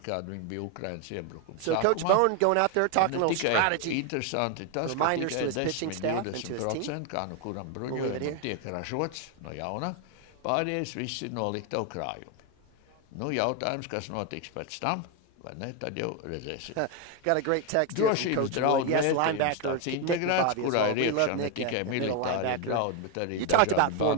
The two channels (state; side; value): different; both; correlation 0.01